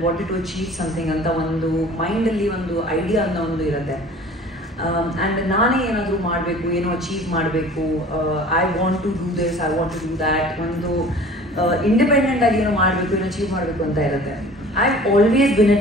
wanted to achieve something ಅಂತ ಒಂದು ಮೈಂಡಲ್ಲಿ ಒಂದು ಐಡಿಯಾ ಅನ್ನೋ ಒಂದು ಇರುತ್ತೆ. ಆ್ಯಂಡ್ ನಾನೇ ಏನಾದರೂ ಮಾಡಬೇಕು, ಏನೋ ಅಚೀವ್ ಮಾಡಬೇಕು, I want to do this, I want to do that, ಒಂದು ಇಂಡಿಪೆಂಡೆಂಟಾಗಿ ಏನೋ ಮಾಡಬೇಕು, ಏನೋ ಅಚೀವ್ ಮಾಡಬೇಕು ಅಂತ ಇರುತ್ತೆ. I always been a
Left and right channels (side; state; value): both; normal; correlation 0.46